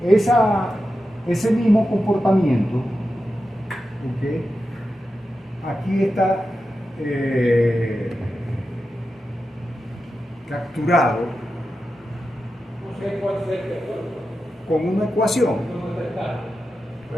ese mismo comportamiento, ¿okay?, aquí está capturado con una ecuación.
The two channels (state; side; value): normal; both; correlation 0.90